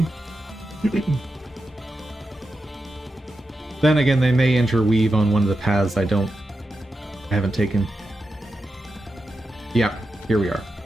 Then again, they may interweave on one of the paths I haven't taken. Yep, here we are.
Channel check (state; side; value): normal; both; correlation 0.89